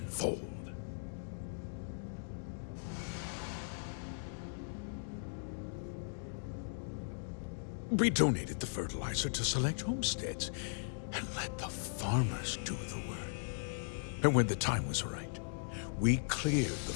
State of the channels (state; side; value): silent; right; digital silence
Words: We donated the fertilizer to select homesteads and let the farmers do the work. And when the time was right, we cleared the